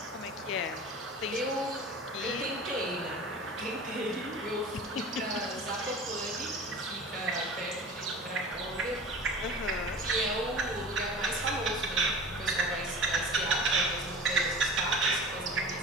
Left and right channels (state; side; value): normal; both; correlation 0.37